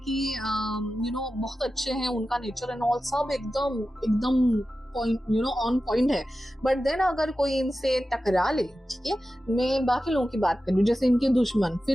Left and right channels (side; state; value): both; normal; correlation 0.93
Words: बहुत अच्छे हैं उनका नेचर एंड ऑल, सब एकदम पॉइंट ऑन पॉइंट है, बट देन अगर कोई इनसे टकरा ले, ठीक है, मैं बाकी लोगों की बात कर रही हूँ, जैसे इनके दुश्मन,